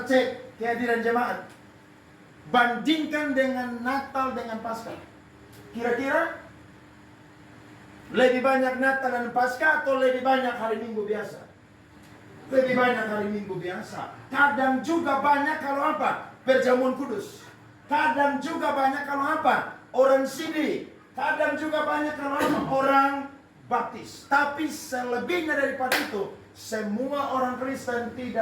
cek kehadiran jemaat. Bandingkan dengan Natal dengan Paskah. Kira-kira lebih banyak Natal dan Paskah atau lebih banyak hari Minggu biasa? Lebih banyak hari Minggu biasa. Kadang juga banyak kalau apa? Perjamuan kudus. Kadang juga banyak kalau apa? Orang sidi. Kadang juga banyak kalau apa? Orang baptis. Tapi selebihnya daripada itu, semua orang Kristen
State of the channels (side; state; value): both; identical; correlation 1.00